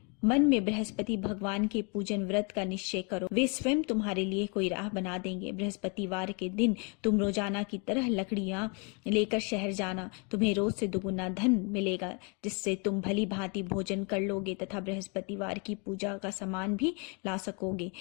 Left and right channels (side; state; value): right; quieter; 34.1 dB